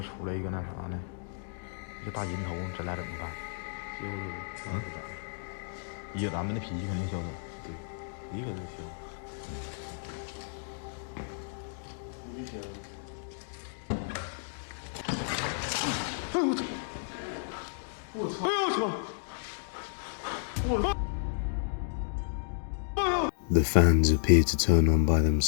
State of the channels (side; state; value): right; silent; digital silence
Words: 出来一个那啥呢，一个大银头，咱俩怎么办？以咱们的脾气肯定消失。对，你肯定消。危险！哎呦我操！我操！哎呦我操！我。The fans appear to turn on by